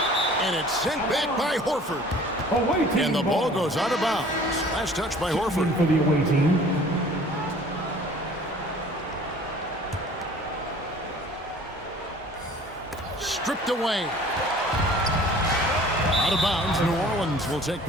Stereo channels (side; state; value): both; normal; correlation 0.49